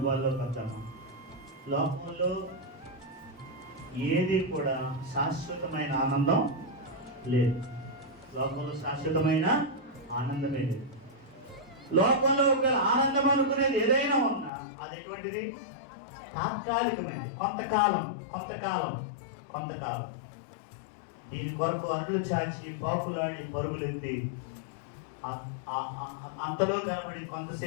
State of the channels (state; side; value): drops out; right; at 14.5 s